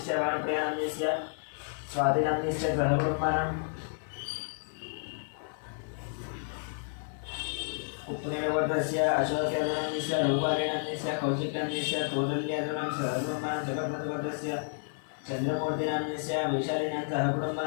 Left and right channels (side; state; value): right; silent; digital silence